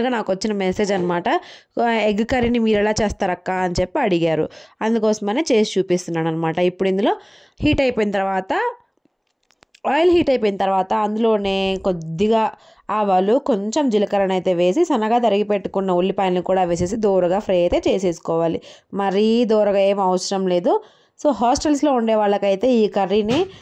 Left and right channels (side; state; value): both; identical; correlation 1.00